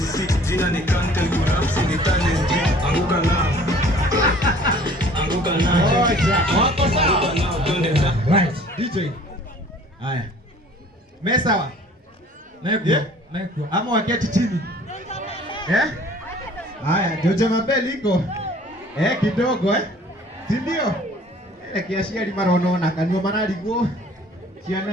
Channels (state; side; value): normal; both; correlation 0.51